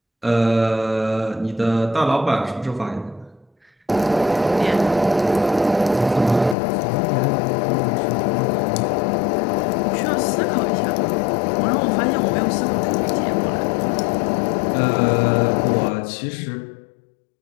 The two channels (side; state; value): right; drops out; at 6.6 s